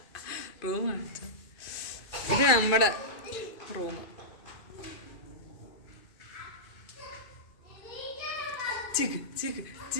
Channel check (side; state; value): right; late; 2.4 ms